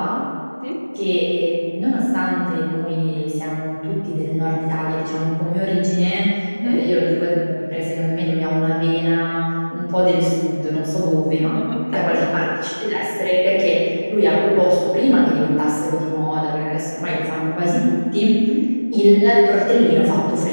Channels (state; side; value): inverted; both; correlation -1.00